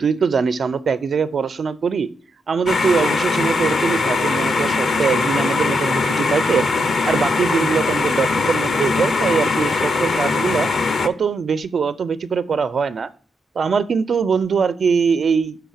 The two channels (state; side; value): normal; both; correlation 0.81